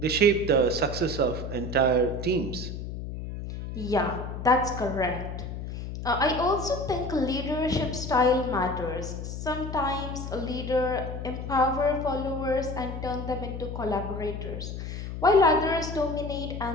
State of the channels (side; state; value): left; noise; hum, 7 dB below the sound